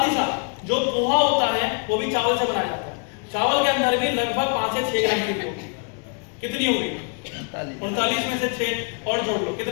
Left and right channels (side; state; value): right; quieter; 38.3 dB